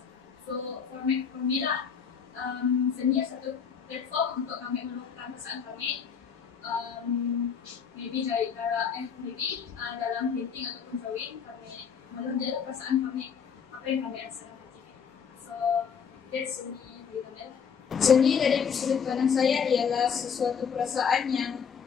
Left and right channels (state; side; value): quieter; right; 6.8 dB